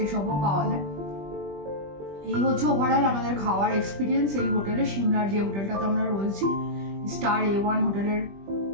এসবও পাওয়া যায়। এই হচ্ছে ওভারঅল আমাদের খাওয়ার এক্সপিরিয়েন্স এই হোটেলে, সিমলার যে হোটেলটাতে আমরা রয়েছি, স্টার A1 হোটেলের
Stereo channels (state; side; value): late; left; 20 ms